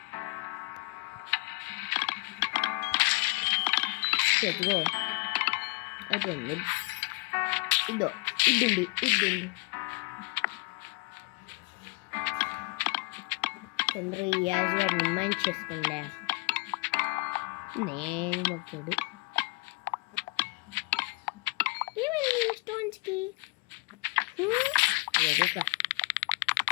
చెట్టుకో అయిపోయింది. ఇద్దండి చంద్ర యాజ్ మైండ్ చేసుకోండి. నేను వచ్చాడు ఏమైంది స్టోన్స్ కి.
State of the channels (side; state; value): right; quieter; 29.4 dB